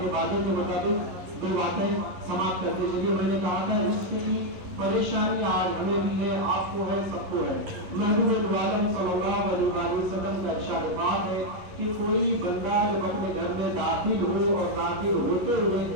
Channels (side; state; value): left; late; 11 ms